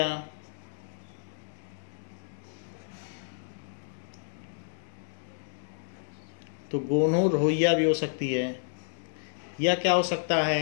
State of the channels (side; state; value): right; silent; digital silence